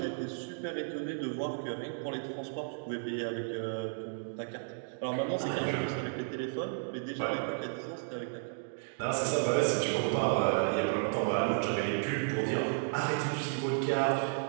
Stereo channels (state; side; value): silent; left; digital silence